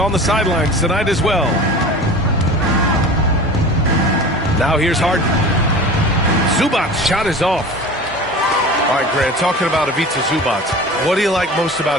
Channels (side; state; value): both; normal; correlation 0.37